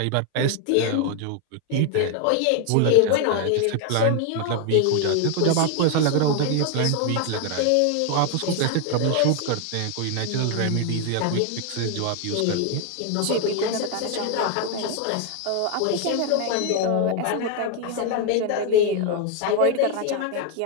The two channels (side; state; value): both; different; correlation 0.01